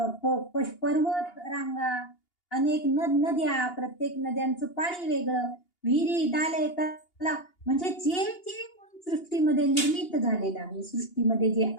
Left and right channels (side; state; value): right; late; 2.8 ms